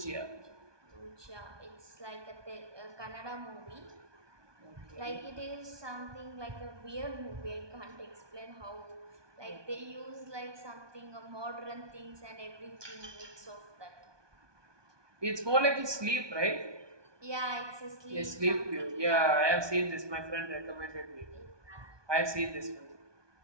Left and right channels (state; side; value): late; left; 1.2 ms